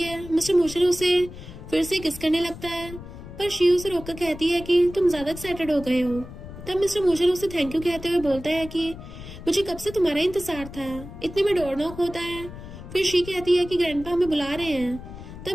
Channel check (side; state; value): left; noise; rumble, 13 dB below the sound